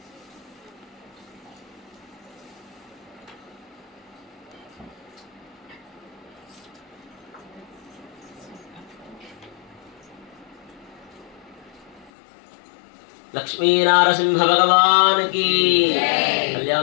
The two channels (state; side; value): drops out; right; at 12.1 s